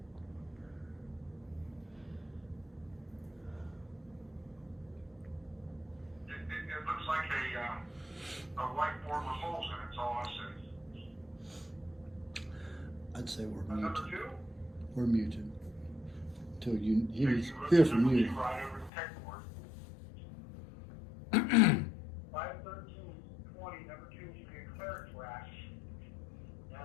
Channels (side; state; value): right; drops out; at 18.9 s